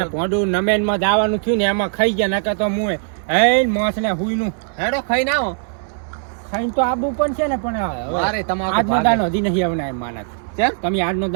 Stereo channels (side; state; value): left; silent; digital silence